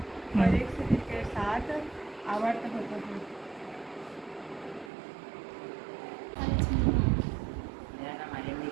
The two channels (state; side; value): drops out; left; at 4.9 s